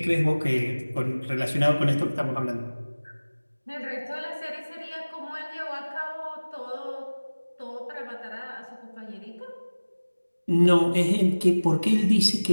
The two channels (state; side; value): inverted; both; correlation -1.00